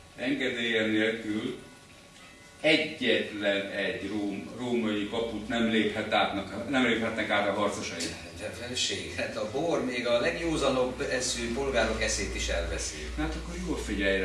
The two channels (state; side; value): identical; both; correlation 1.00